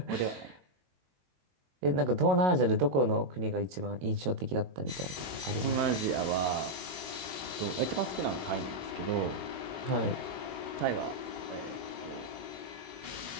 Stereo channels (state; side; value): late; left; 22 ms